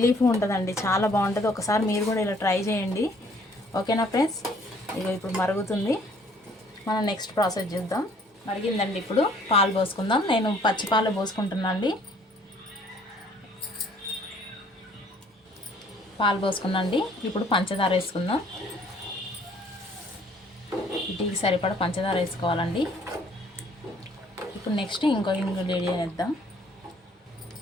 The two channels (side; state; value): both; normal; correlation 0.60